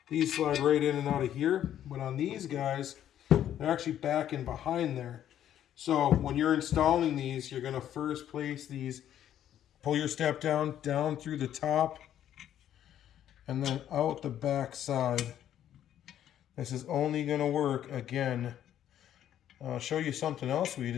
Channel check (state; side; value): quieter; right; 10.9 dB